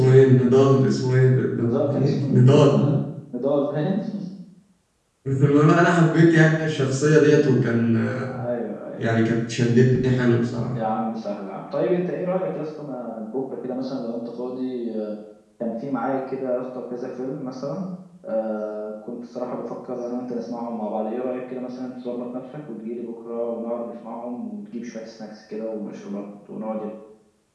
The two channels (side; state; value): both; identical; correlation 1.00